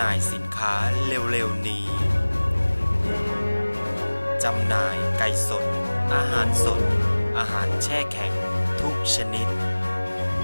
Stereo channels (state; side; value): inverted; both; correlation -1.00